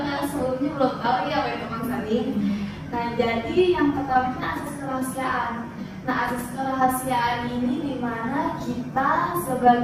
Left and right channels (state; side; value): identical; both; correlation 1.00